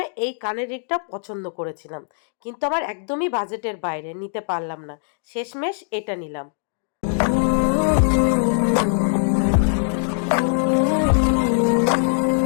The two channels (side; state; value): right; silent; digital silence